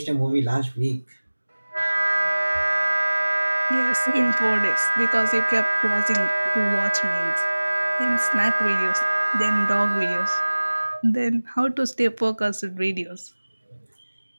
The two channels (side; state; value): both; inverted; correlation -1.00